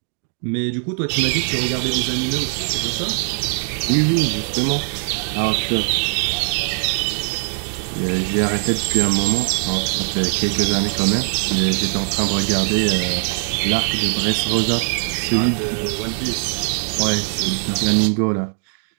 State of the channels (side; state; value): left; silent; 58 dB below the other